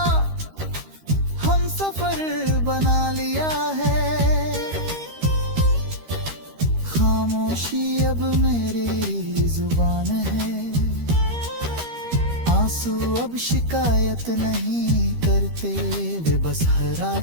हम सफर बना लिया है। खामोशी अब मेरी जुबान है, आंसू अब शिकायत नहीं करते, वे बस हर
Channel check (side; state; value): left; late; 13 ms